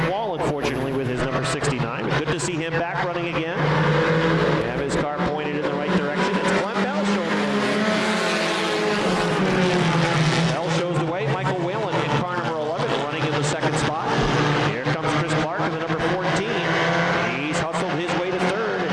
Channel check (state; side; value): identical; both; correlation 1.00